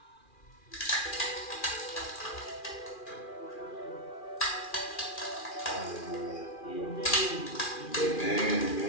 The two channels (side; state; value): right; late; 2.4 ms